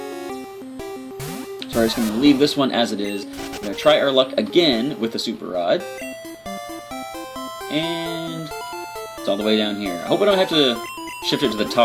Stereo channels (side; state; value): both; identical; correlation 1.00